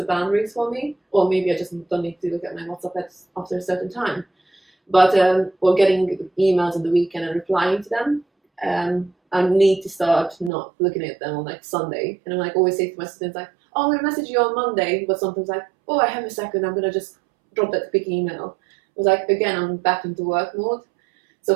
boundaries for me. Or maybe I just don't need to look at my WhatsApp after a certain time. But or getting emails on the weekend and replying to them. I need to start not looking at them on like Sunday. And I'm like always say to my students like, "Oh, I'm gonna message you on Monday," but sometimes like, "Oh, I have a second, I'm gonna just drop that quick email." I was like, again, I'm back into work mode. So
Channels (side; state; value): left; drops out; at 10.5 s